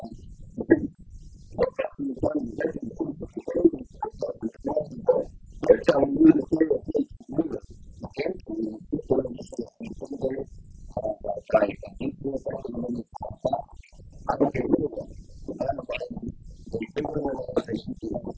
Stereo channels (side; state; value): both; identical; correlation 1.00